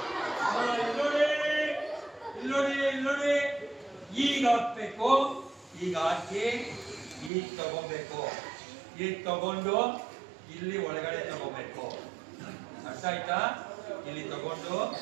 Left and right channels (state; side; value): drops out; left; at 7.3 s